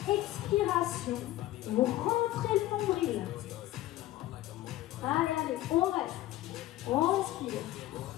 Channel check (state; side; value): quieter; right; 15.4 dB